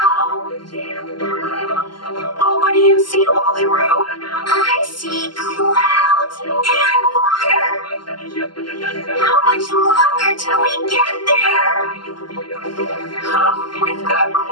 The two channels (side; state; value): right; late; 0.71 ms